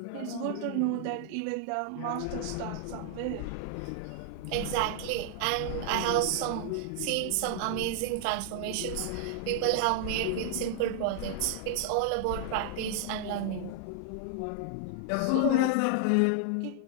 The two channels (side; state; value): both; different; correlation 0.00